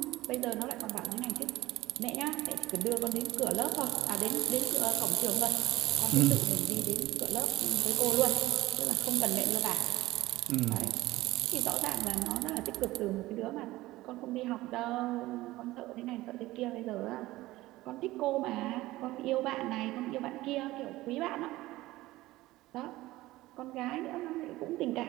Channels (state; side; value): quieter; left; 17.8 dB